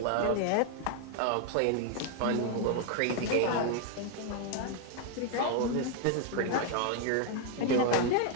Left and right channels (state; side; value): different; both; correlation 0.01